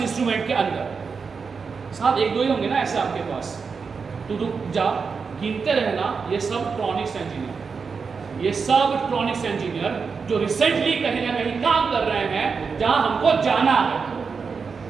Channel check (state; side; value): quieter; left; 5.3 dB